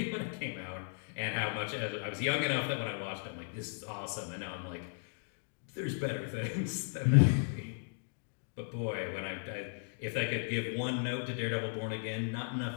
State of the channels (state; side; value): silent; right; digital silence